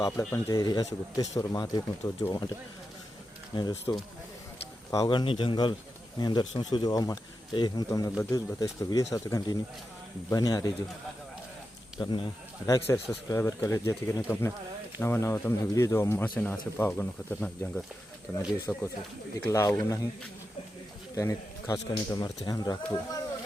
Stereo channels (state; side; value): normal; both; correlation 0.89